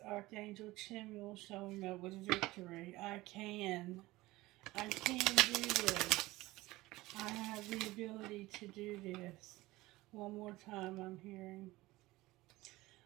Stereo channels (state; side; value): quieter; left; 19.0 dB